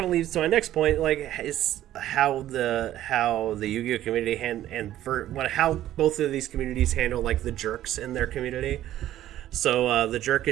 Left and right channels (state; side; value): quieter; left; 13.1 dB